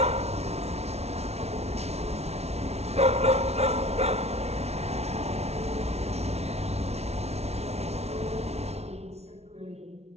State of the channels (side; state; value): left; late; 0.31 ms